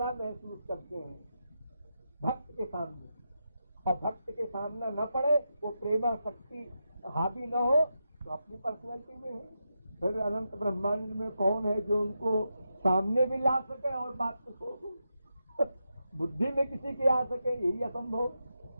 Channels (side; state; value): both; inverted; correlation -0.87